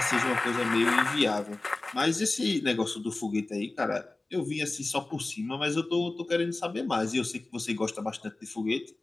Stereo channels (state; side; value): quieter; right; 3.1 dB